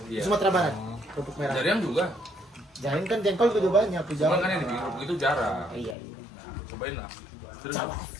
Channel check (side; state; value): right; drops out; at 6.0 s